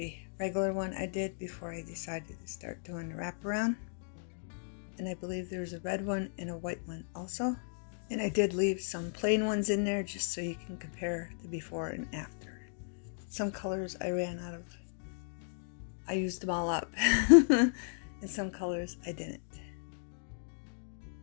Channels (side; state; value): right; silent; digital silence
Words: regular one I did before I decided to start doing the wraparound, and I believe there's a red one and a white one also. And I did leave some plain ones in there just so you can compare the before and after. Some colors I ran out of. I used them all up. And some colors I didn't.